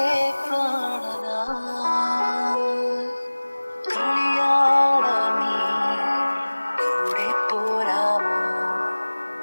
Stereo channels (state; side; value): inverted; both; correlation -1.00